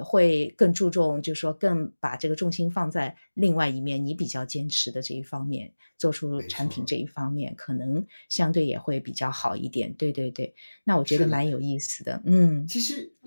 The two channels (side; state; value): both; inverted; correlation -1.00